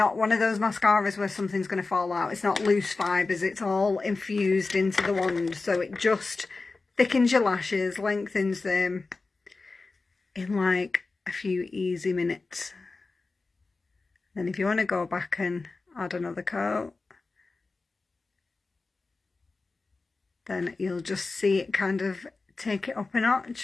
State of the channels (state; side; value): quieter; right; 3.8 dB